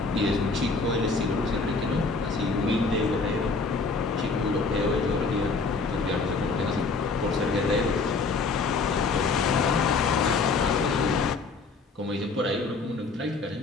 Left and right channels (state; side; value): quieter; right; 4.1 dB